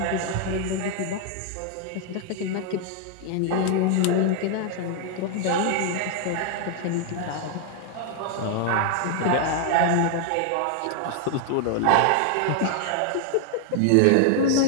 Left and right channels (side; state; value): both; different; correlation 0.00